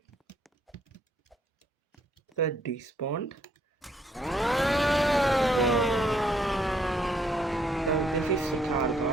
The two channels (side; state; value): both; normal; correlation 0.69